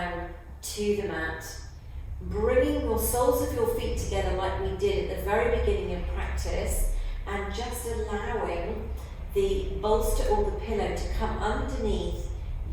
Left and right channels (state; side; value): identical; both; correlation 1.00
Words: to the mat. Bringing your soles of your feet together like we did at the very beginning of practice, and just allowing the bolster or the pillow to come underneath